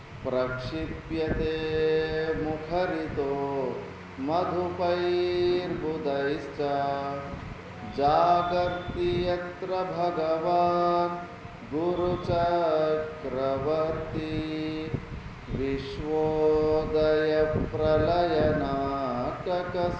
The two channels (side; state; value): both; identical; correlation 1.00